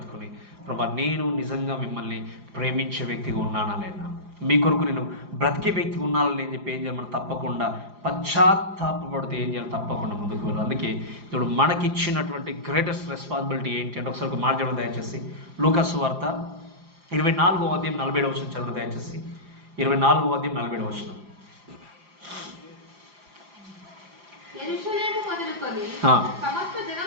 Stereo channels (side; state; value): left; late; 4.9 ms